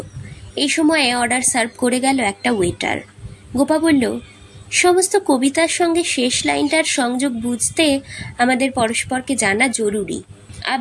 এই সময়ে অর্ডার সার্ভ করে গেল একটা ওয়েটার। গোপা বলল, সমস্ত কবিতার সঙ্গে শেষ লাইনটার সংযোগ বুঝতে আমাদের পরস্পরকে জানা জরুরি।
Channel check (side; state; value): both; identical; correlation 1.00